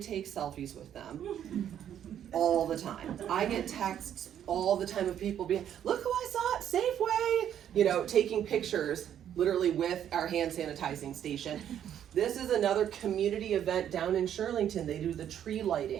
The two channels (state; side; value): quieter; left; 9.9 dB